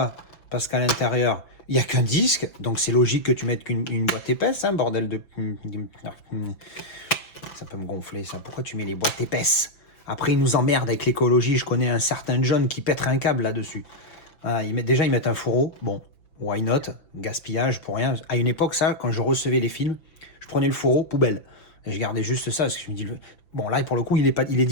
Parce qu'à l'intérieur, il n'y a qu'un disque. Donc c'est logique que tu mettes qu'une boîte épaisse, hein, bordel de... Ça peut me gonfler, ça. Pourquoi tu mets les boîtes épaisses? Après, ils nous emmerdent avec l'écologie. Je connais un certain John qui pèterait un câble là-dessus. Ah, ils mettent un fourreau. Bon, why not? Gaspillage pour rien. À une époque, ça, quand je recevais les films, je prenais le fourreau, poubelle. Et je gardais juste ça, parce que je me dis... Bon, là, pour le coup, il est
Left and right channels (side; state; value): right; late; 5.9 ms